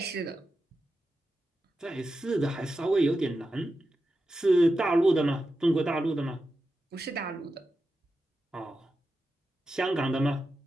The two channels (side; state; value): both; normal; correlation 0.90